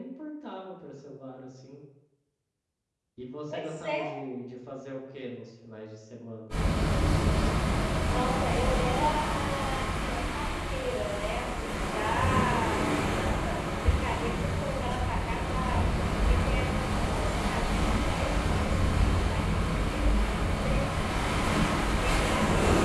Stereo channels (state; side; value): identical; both; correlation 1.00